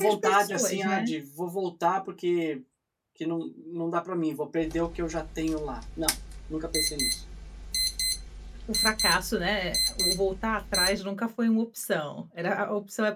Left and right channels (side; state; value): both; identical; correlation 1.00